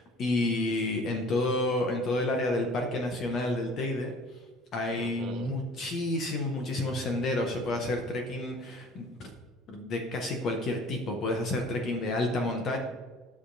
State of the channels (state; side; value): normal; both; correlation 0.49